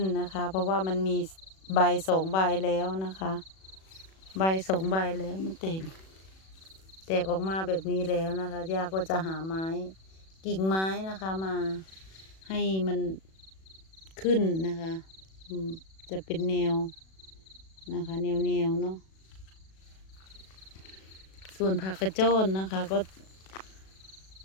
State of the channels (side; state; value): right; late; 37 ms